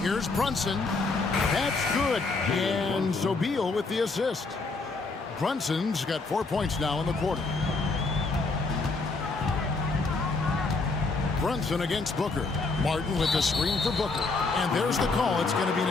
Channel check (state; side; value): quieter; right; 3.8 dB